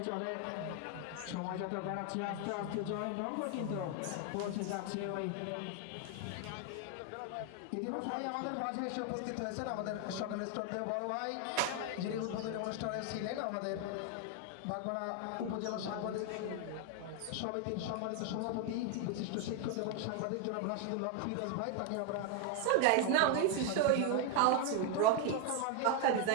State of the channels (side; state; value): both; different; correlation 0.00